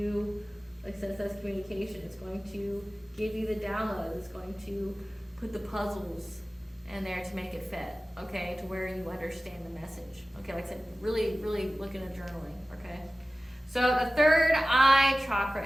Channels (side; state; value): both; normal; correlation 0.97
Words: like I said, it says communication. It's going to give you the downloads. It's going to put the puzzles in there to make it fit, okay, to where you understand the message. Okay, like I said, really, really look into journaling, okay? So the third eye chakra